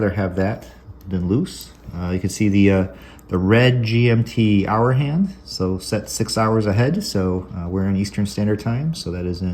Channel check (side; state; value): both; identical; correlation 1.00